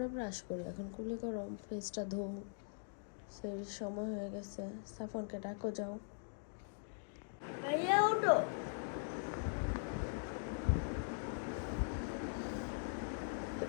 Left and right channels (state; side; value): silent; right; digital silence